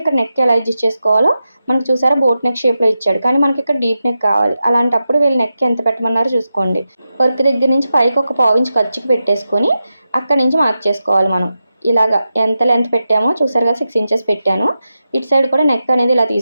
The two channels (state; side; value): inverted; both; correlation -0.90